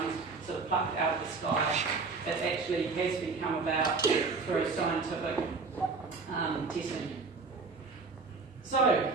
sort of plucked out of the sky. It actually has become about through scientific testing. So,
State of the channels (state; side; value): quieter; left; 4.3 dB